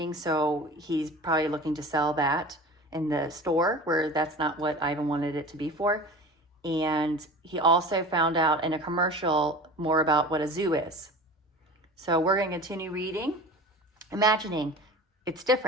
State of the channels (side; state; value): both; normal; correlation 0.36